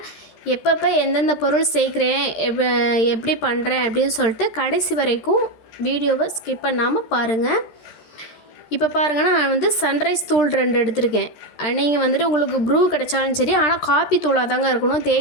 எப்பப்போ எந்தெந்த பொருள் சேர்க்குறேன், எப்படி பண்ணுறேன் அப்படின்னு சொல்லிட்டு கடைசி வரைக்கும் வீடியோவை ஸ்கிப் பண்ணாமல் பாருங்கள். இப்போ பாருங்கன்னா, நான் வந்து சன்ரைஸ் தூள் 2 எடுத்திருக்கேன். நீங்கள் வந்துட்டு உங்களுக்கு ப்ரூ கிடைச்சாலும் சரி, ஆனால் காஃபி தூளாக தாங்க இருக்கணும்.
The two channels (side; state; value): right; late; 13 ms